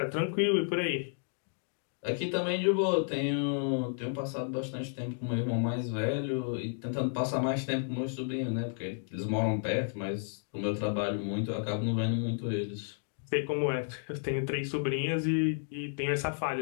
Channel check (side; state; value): right; silent; digital silence